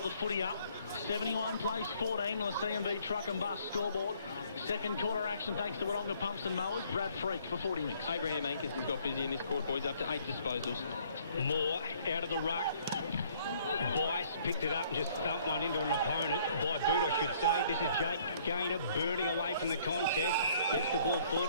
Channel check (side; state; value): both; inverted; correlation -0.61